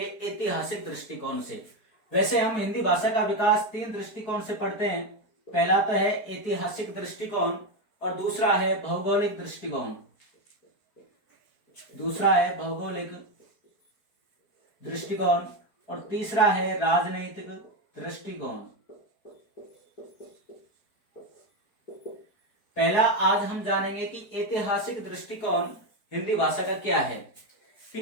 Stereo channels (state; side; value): late; right; 4.7 ms